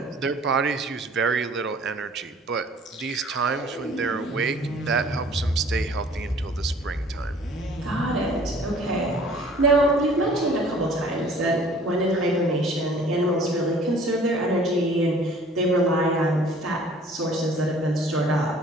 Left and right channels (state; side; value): normal; both; correlation 0.52